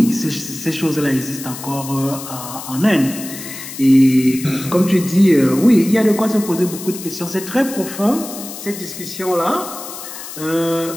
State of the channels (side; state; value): left; noise; hiss, 11 dB below the sound